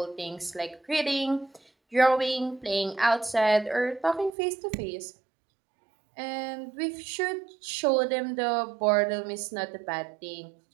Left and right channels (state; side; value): drops out; left; at 4.3 s